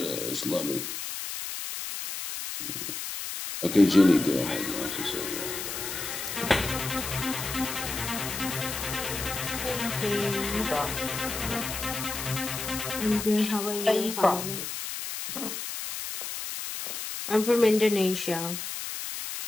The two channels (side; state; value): left; noise; hiss, 5 dB below the sound